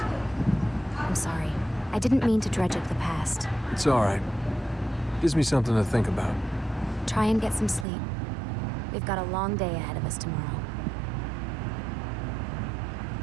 I'm sorry. I didn't mean to dredge up the past. It's all right. Gives me something to think about. Try and get some sleep. We've got a long day ahead of us tomorrow.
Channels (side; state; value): left; drops out; at 7.9 s